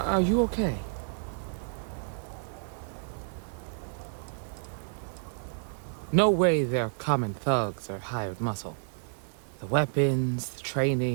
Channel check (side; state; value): left; silent; 58 dB below the other